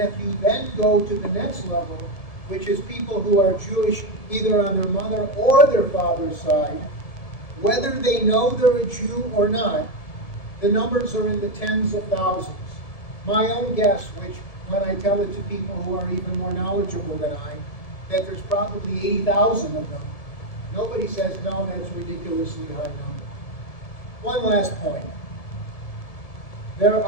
if you then go to the next level, which is people who are Jewish either on their mother or their father's side, whether they know they're a Jew or not, the numbers are in the tens of thousands. My own guess, which when I tell it to people who are even more knowledgeable than I, that there's probably 80,000 of them. Nobody says, no, that's a ridiculously high number. One last point. There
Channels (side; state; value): right; late; 1.7 ms